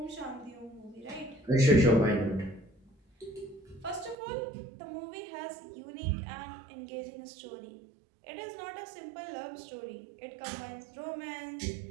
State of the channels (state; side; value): drops out; left; at 4.2 s